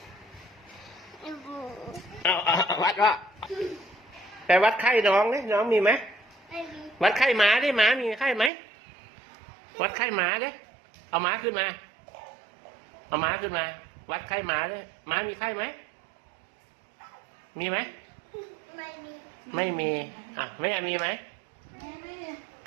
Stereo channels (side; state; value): left; drops out; at 8.5 s